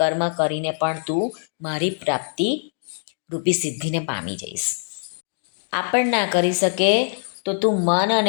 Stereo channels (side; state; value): right; silent; 63 dB below the other